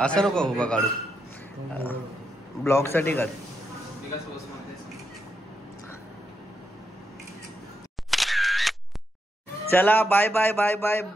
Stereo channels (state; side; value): normal; both; correlation 0.82